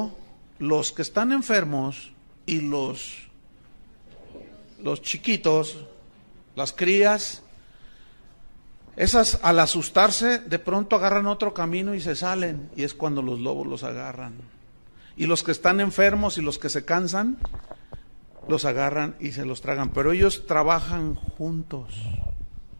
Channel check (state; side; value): inverted; both; correlation -1.00